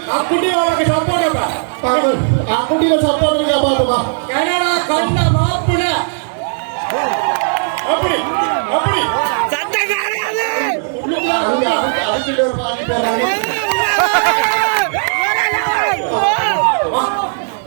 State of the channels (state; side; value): silent; left; 69 dB below the other